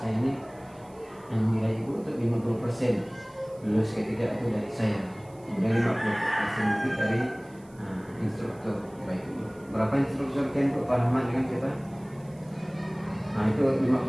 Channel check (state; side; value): noise; right; hiss, 29 dB below the sound